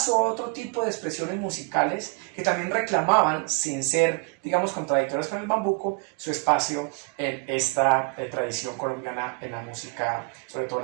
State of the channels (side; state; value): left; quieter; 31.4 dB